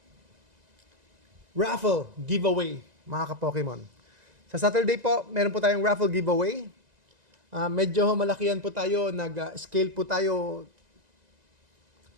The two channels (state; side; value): late; left; 2.0 ms